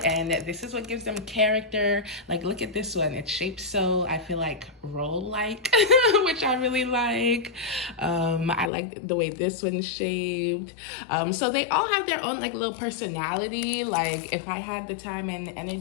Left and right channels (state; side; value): drops out; right; at 8.7 s